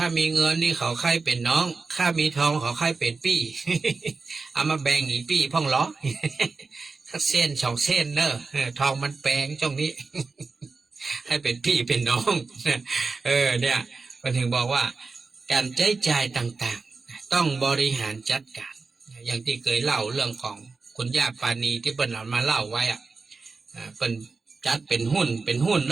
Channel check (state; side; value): quieter; left; 4.3 dB